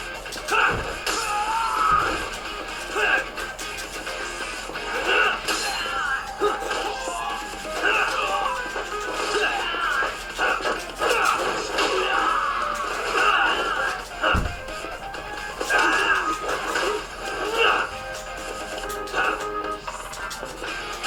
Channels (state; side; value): identical; both; correlation 1.00